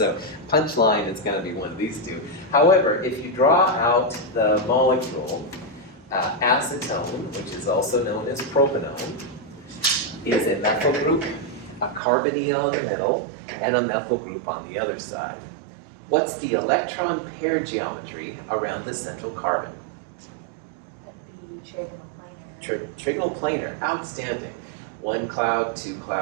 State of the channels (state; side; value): drops out; left; at 12.0 s